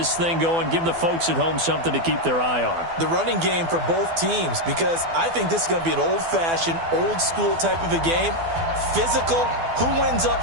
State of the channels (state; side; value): late; left; 12 ms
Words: thing going, give the folks at home something to keep their eye on. The running game for both teams, because I think this is going to be an old-fashioned, old-school type of a game. Physical, who wins